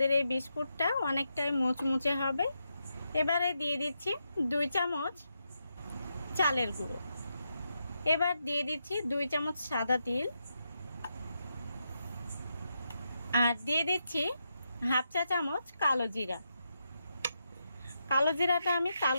এই বিস্কুটটা অনেকটাই মুচমুচে হবে। এবারে দিয়ে দিচ্ছি 2 চামচ চালের গুঁড়ো। এবার দিয়ে দিচ্ছি 2 চামচ সাদা তিল, আর দিয়ে দিচ্ছি 1/2 চা চামচ কালো জিরা। কালো জিরাটা আমি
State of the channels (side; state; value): both; inverted; correlation -0.84